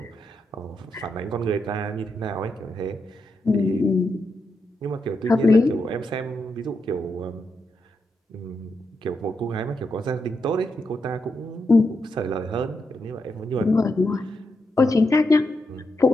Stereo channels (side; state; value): both; normal; correlation 0.84